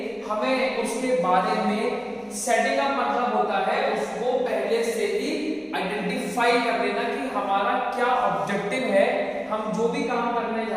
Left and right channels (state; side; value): identical; both; correlation 1.00